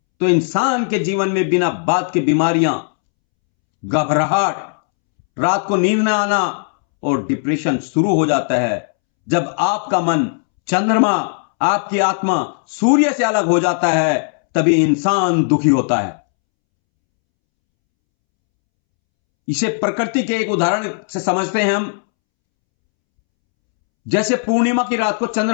तो इंसान के जीवन में बिना बात के बीमारियां, घबराहट, रात को नींद न आना और डिप्रेशन शुरू हो जाता है। जब आपका मन चंद्रमा, आपकी आत्मा सूर्य से अलग हो जाता है तभी इंसान दुखी होता है। इसे प्रकृति के एक उदाहरण से समझते हैं हम। जैसे पूर्णिमा की रात को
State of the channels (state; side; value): silent; right; 68 dB below the other